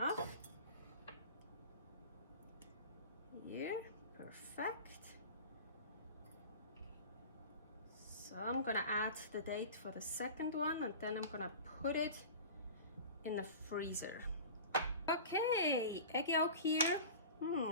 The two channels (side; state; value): both; inverted; correlation -0.35